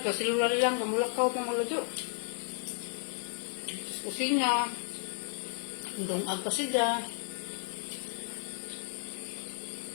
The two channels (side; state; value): right; silent; 55 dB below the other